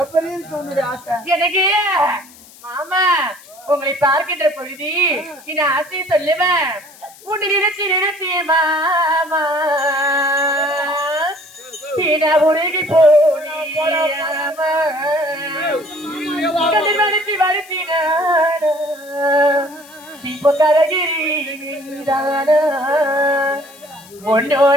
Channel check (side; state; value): left; noise; hiss, 22 dB below the sound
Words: எனக்கு மாமா உங்களை பார்க்கின்ற பொழுது இந்த ஆசையை சொல்லுவேன். உன்னை நினைச்சு நினைச்சு மாமா உருகி போனாமா மறுத்தி மறுத்தின இப்போ கரகிரி